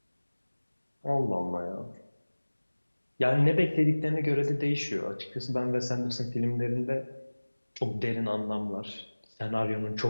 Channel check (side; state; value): both; inverted; correlation -1.00